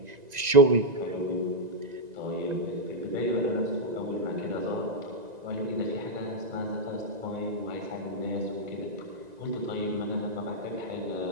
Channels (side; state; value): left; late; 1.9 ms